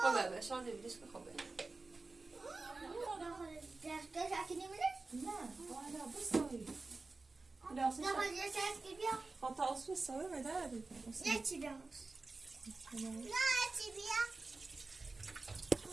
Haber şu an evlilik haber. Derste sakin misin? Ne? Hala bu sayı. Biraz Ne yapacağız ses gibi? hata olsun sayı mı derdi? Ne çiziyoruz? Tamam. Ne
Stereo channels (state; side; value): quieter; left; 3.6 dB